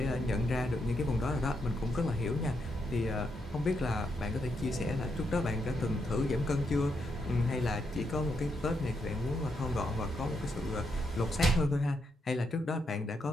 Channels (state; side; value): normal; both; correlation 0.80